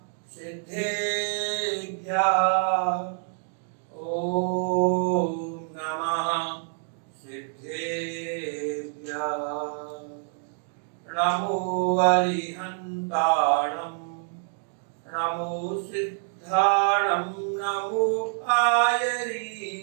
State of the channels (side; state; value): left; silent; 60 dB below the other